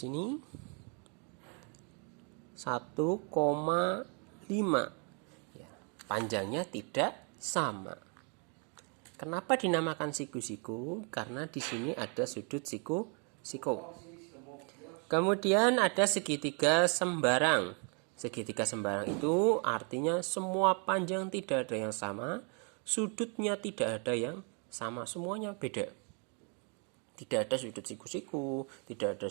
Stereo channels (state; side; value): quieter; left; 37.5 dB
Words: 1,5. Ya, panjangnya tidak sama. Kenapa dinamakan siku-siku? Karena di sini ada sudut siku-siku. Kemudian ada segitiga sembarang. Segitiga sembarang itu artinya semua panjang tidak ada yang sama, sudutnya tidak ada yang sama, semuanya beda. Tidak ada sudut siku-siku, tidak